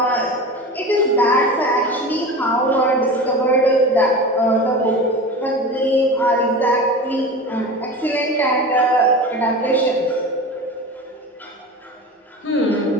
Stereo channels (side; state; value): both; normal; correlation 0.31